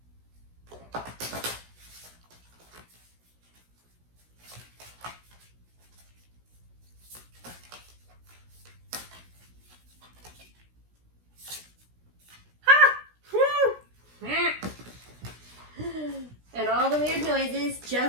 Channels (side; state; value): left; late; 16 ms